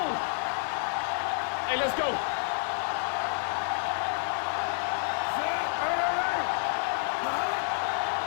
Hey, let's go.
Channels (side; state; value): right; silent; 58 dB below the other